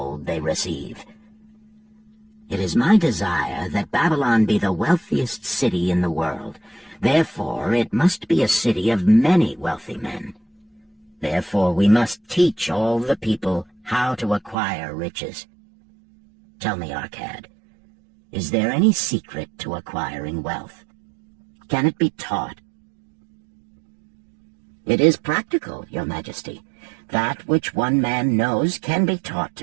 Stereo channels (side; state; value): left; drops out; at 14.6 s